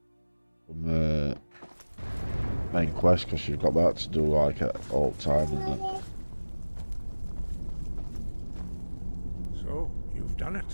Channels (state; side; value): inverted; both; correlation -1.00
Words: the main quest, because you've got that to do like at all time and that. So, you've done